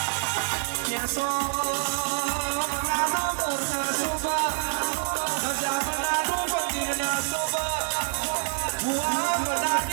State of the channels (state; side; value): silent; left; digital silence